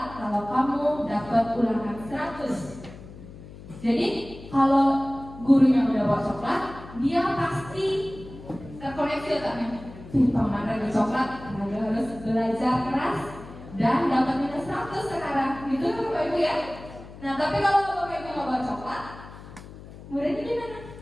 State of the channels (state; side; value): noise; left; hum, 16 dB below the sound